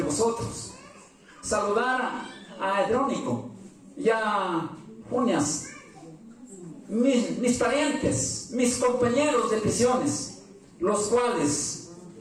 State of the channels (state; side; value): identical; both; correlation 1.00